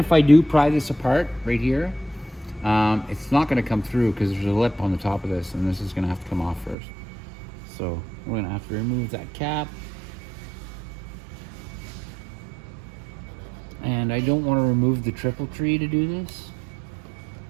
I do pry this apart right here, it's not going to come through because there's a lip on the top of this, and this is going to have to come off first. So we're going to have to remove that cap. And I don't want to remove the triple tree to do this.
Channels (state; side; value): drops out; left; at 6.8 s